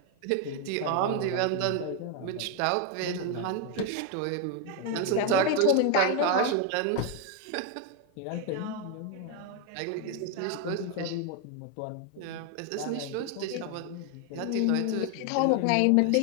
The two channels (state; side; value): different; both; correlation 0.01